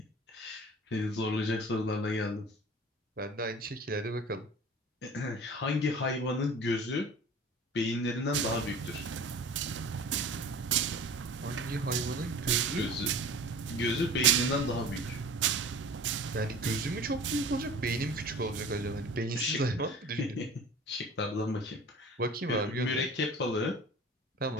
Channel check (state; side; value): normal; both; correlation 0.40